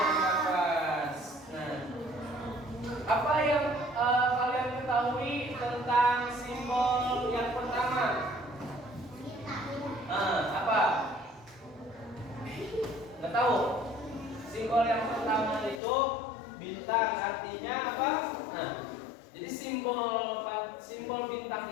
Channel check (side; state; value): right; drops out; at 15.8 s